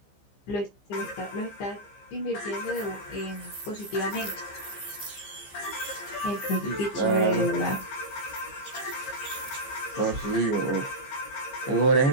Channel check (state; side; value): late; right; 15 ms